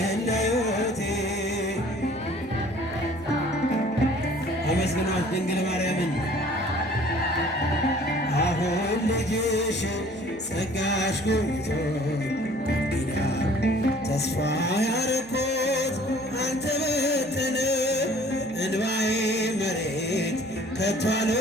ለሕይወቴ አመስግኗት ድንግል ማርያምን። አሁን ልጅሽ ጸጋሽ ጎብኝቶኝ ኪዳን ተስፋ ያረኩት አልተበተነ እንባዬ መሬት ከቶ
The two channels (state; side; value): noise; right; hum, 25 dB below the sound